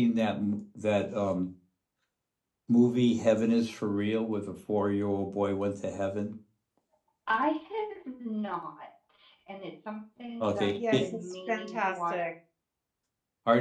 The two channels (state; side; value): identical; both; correlation 1.00